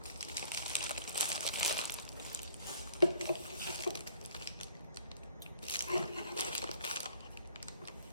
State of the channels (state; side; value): inverted; both; correlation -0.57